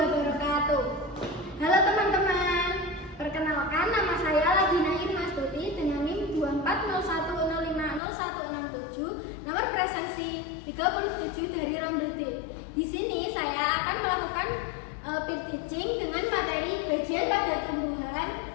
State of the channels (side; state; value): right; drops out; at 8.0 s